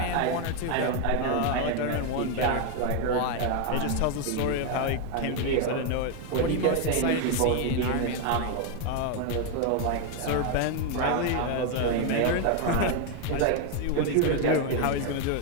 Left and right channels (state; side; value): different; both; correlation 0.01